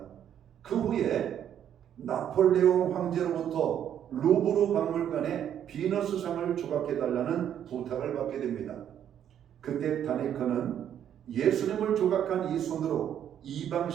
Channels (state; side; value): quieter; left; 9.8 dB